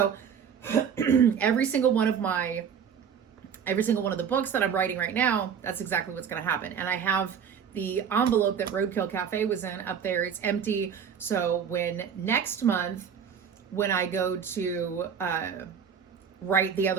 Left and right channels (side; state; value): left; quieter; 7.4 dB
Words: every single one of the books that I'm writing right now, that's exactly what's going to happen. And I have the envelope that Roadkill Cafe was in up there. It's empty. So when next month, when I go to write the